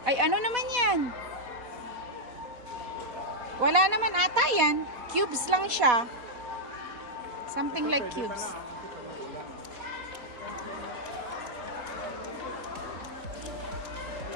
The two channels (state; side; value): late; left; 4.1 ms